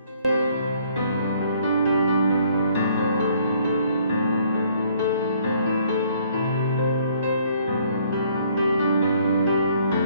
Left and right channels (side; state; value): both; inverted; correlation -0.63